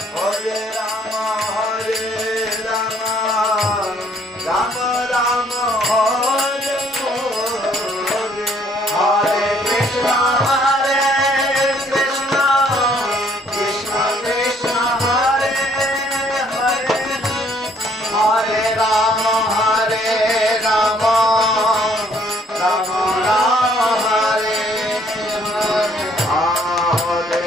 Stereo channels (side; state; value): both; normal; correlation 0.63